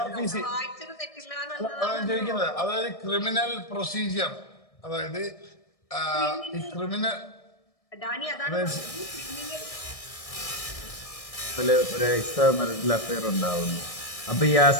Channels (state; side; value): late; right; 1.6 ms